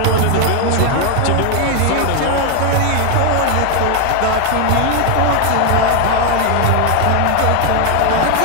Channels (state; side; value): different; both; correlation 0.01